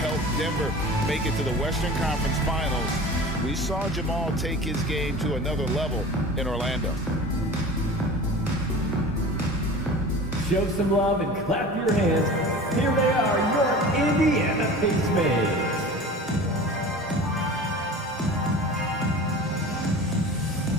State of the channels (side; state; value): both; normal; correlation 0.38